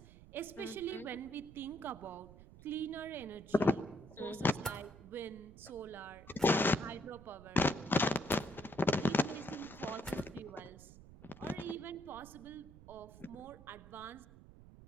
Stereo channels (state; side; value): noise; right; rumble, 18 dB below the sound